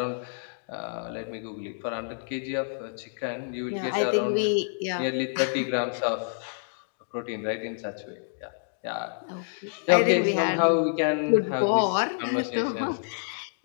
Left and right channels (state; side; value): silent; right; digital silence